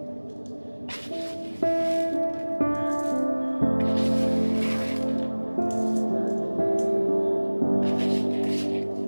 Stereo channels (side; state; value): both; inverted; correlation -1.00